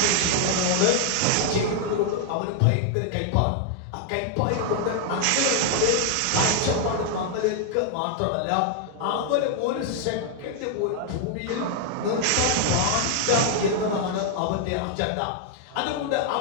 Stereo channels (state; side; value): different; both; correlation 0.00